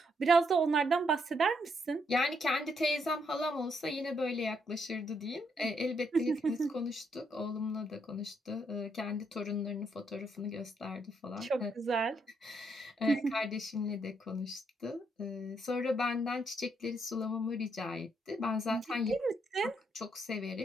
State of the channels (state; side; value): normal; both; correlation 0.75